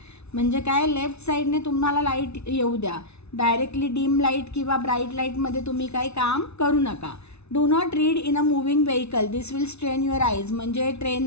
म्हणजे काय, लेफ्ट साईडने तुम्हाला लाईट येऊ द्या. डायरेक्टली डीम लाईट किंवा ब्राईट लाईटमध्ये तुम्ही काही काम करू नका. Do not read in a moving vehicle, this will strain your eyes. म्हणजे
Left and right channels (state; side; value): late; right; 0.81 ms